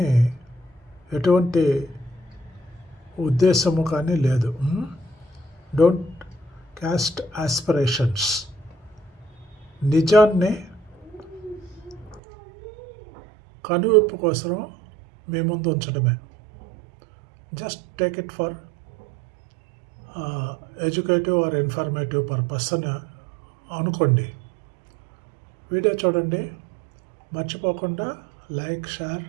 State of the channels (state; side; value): drops out; left; at 12.2 s